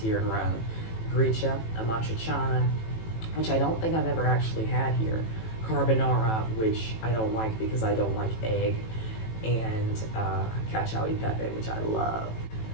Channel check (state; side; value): late; right; 18 ms